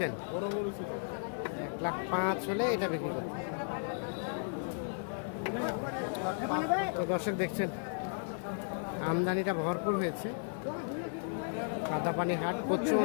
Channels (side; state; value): right; silent; digital silence